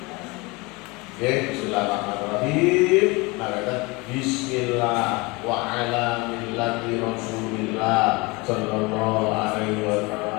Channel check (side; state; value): right; quieter; 25.4 dB